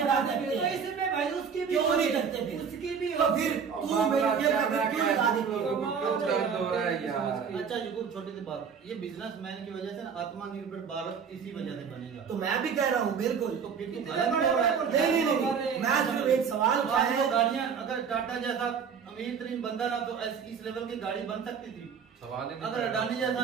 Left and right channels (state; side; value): quieter; left; 6.6 dB